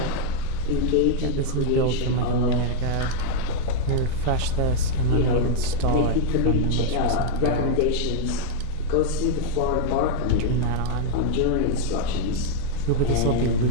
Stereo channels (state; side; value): different; both; correlation 0.00